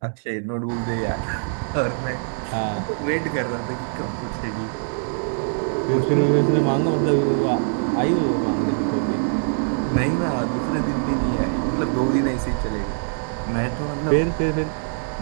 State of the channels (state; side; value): silent; left; digital silence